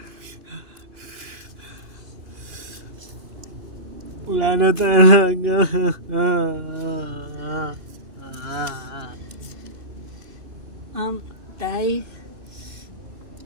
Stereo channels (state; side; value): late; left; 2.8 ms